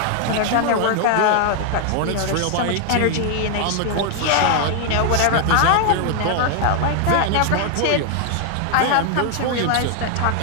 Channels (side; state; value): both; different; correlation 0.00